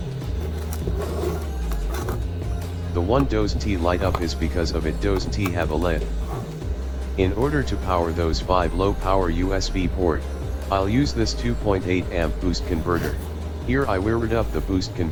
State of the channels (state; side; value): identical; both; correlation 1.00